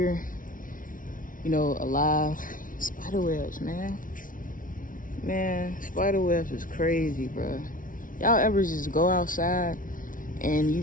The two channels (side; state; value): right; late; 0.39 ms